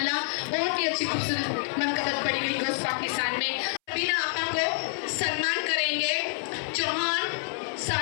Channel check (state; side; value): silent; right; 60 dB below the other